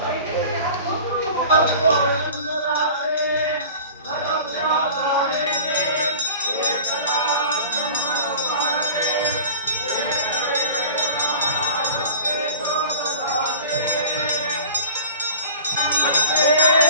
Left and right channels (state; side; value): inverted; both; correlation -0.41